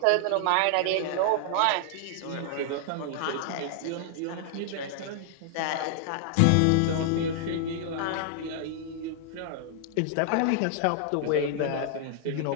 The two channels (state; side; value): different; both; correlation -0.01